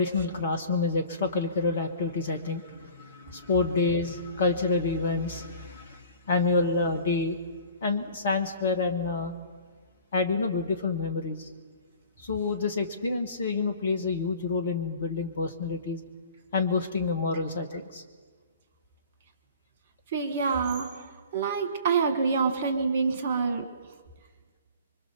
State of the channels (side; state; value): both; inverted; correlation -0.45